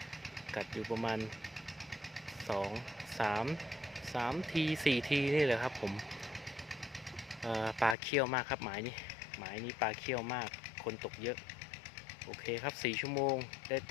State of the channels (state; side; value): drops out; right; at 8.0 s